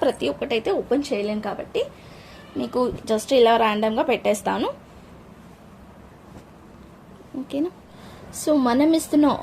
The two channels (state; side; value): identical; both; correlation 1.00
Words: ప్రతి ఒక్కటి అయితే ఓపెన్ చేయలేను కాబట్టి మీకు జస్ట్ ఇలా ర్యాండమ్గా పెట్టేస్తాను, ఓకేనా. సో మనం ఇస్తున్న